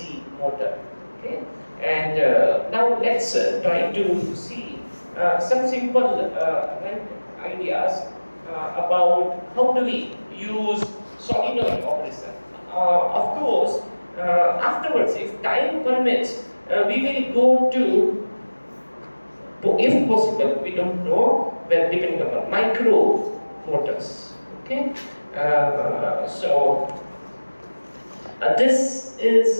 motor. Okay, and now let's try to see some simple right, ideas about how do we use solenoid operation. Of course, afterwards, if time permits, we will go to, if possible, we don't know, well, depending upon micro motors. Okay, so this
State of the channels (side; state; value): both; inverted; correlation -1.00